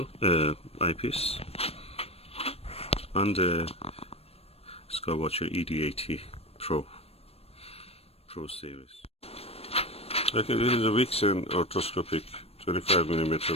eyepiece on the Skywatcher ED80 Pro series. Okay, this is a Vixen orthoscopic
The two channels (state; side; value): late; right; 0.29 ms